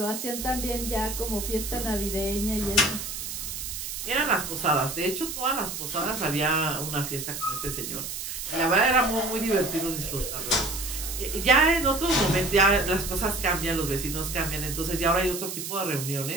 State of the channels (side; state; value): right; noise; hiss, 6 dB below the sound